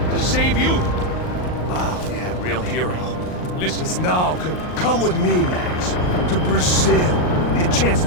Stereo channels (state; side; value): late; right; 39 ms